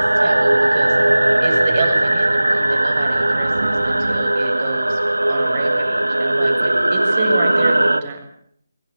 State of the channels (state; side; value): inverted; both; correlation -0.98